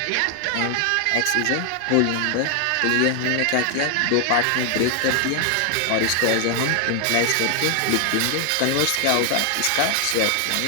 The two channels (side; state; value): both; different; correlation 0.00